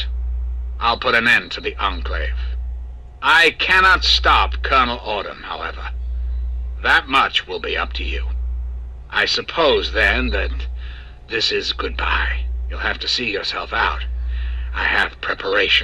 I'll put an end to the Enclave. I cannot stop Colonel Autumn, however. That much will be up to you. I suppose, then, that this is goodbye. You'll have to see yourself out. I have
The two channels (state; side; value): identical; both; correlation 1.00